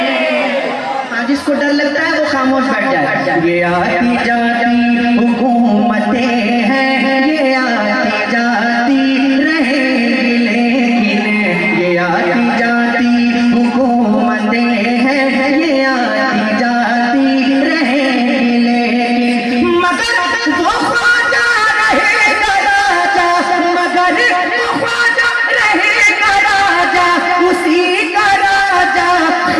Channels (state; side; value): identical; both; correlation 1.00